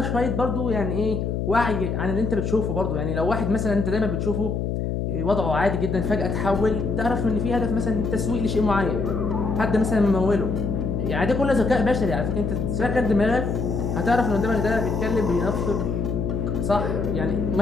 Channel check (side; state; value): left; noise; hum, 1 dB below the sound